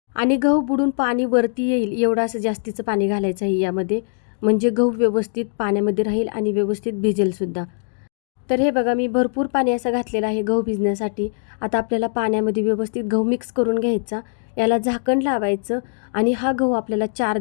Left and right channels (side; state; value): right; silent; digital silence